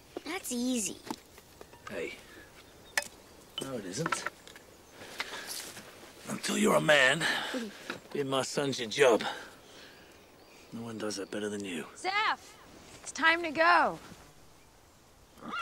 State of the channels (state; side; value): identical; both; correlation 1.00